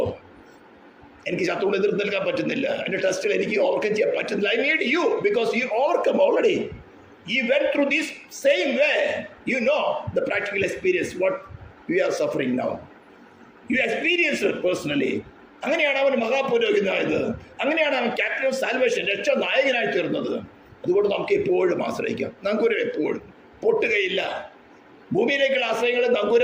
എനിക്ക് ശത്രുവിനെ എതിർത്ത് നിൽക്കാൻ പറ്റുന്നില്ല, എൻ്റെ ടെസ്റ്റിൽ എനിക്ക് ഓവർകം ചെയ്യാൻ പറ്റുന്നില്ല. I need you because you overcome already. He went through this same way. You know the practical experience what we are suffering now. You experienced it personally. അങ്ങനെയാണ് അവൻ മഹാപുരോഹിതനായത്. അങ്ങനെയാണ് അവൻ ക്യാപ്റ്റൻ ഓഫ് സാൽവേഷൻ, രക്ഷാ നായകനായി തീർന്നത്. അതുകൊണ്ട് നമുക്ക് എപ്പോഴും ആശ്രയിക്കാം. നങ്കൂരം എപ്പോഴും പൊട്ടുകയില്ല. ഭൂമിയിലേക്കുള്ള ആശ്രയങ്ങൾ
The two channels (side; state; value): both; identical; correlation 1.00